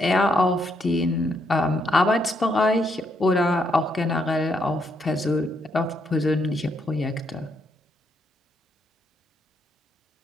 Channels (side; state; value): both; normal; correlation 0.76